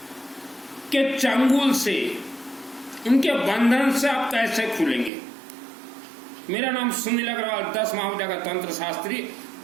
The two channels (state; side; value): drops out; left; at 5.1 s